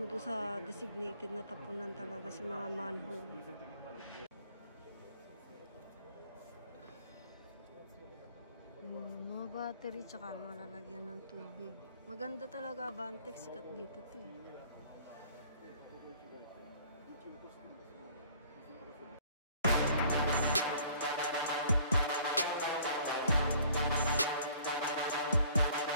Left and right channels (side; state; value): both; inverted; correlation -0.56